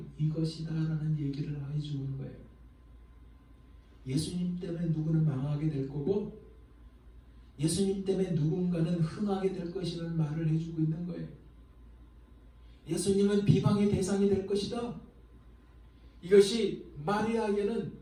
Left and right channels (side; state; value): both; identical; correlation 1.00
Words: 이것이다 라는 얘기를 해주는 거예요. 예수님 때문에 누구는 망하게 될 거고 예수님 때문에 누군가는 흥하게 될 것이라는 말을 해주고 있는 거예요. 예수님은 비방의 대상이 될 것이다. 이것이 마리아에게는